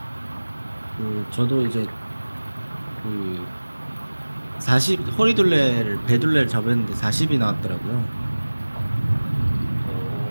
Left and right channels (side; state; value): both; inverted; correlation -1.00